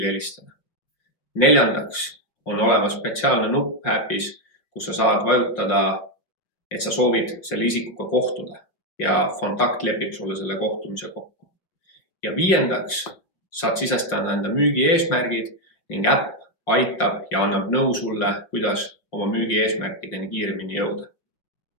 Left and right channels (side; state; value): right; late; 5.4 ms